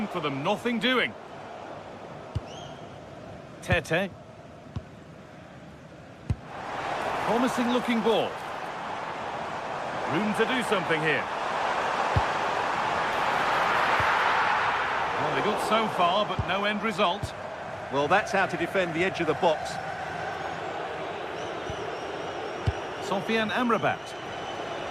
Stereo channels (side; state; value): both; identical; correlation 1.00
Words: for them, nothing doing. Tete. Promising looking ball. Room to do something here. Well, they got so far, but no end result. Well, that's how to defend the edge of the box. Sofian Amrabat.